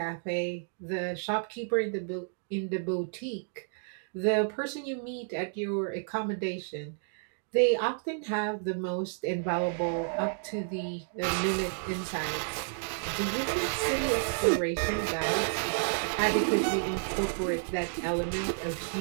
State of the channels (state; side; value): silent; left; digital silence